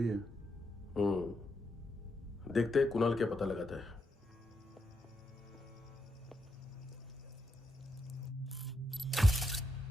है? देखते हैं कुणाल क्या पता लगाता है।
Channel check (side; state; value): both; normal; correlation 0.82